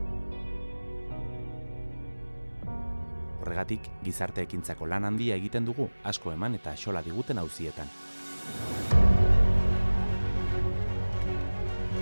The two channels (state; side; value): inverted; both; correlation -1.00